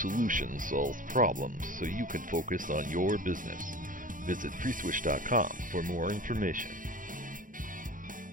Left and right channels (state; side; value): late; left; 0.39 ms